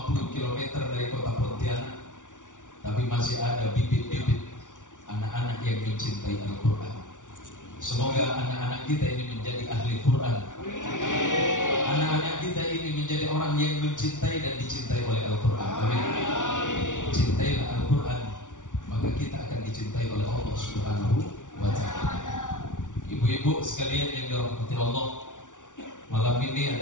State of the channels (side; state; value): right; late; 0.87 ms